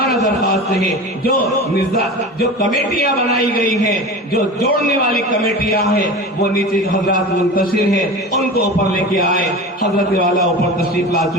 درخواست ہے جو کمیٹیاں بنائی گئی ہیں، جو جوڑنے والی کمیٹیاں ہیں، وہ نیچے حضرات منتشر ہیں، ان کو اوپر لے کے آئے۔ حضرت والا اوپر تشریف لا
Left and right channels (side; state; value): both; normal; correlation 0.32